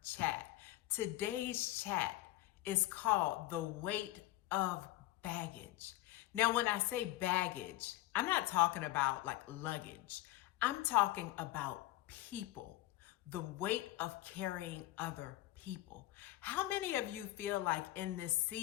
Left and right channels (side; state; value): right; quieter; 16.8 dB